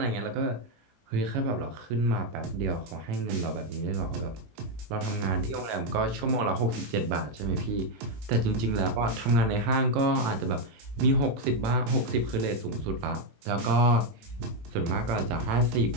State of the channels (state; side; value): late; left; 18 ms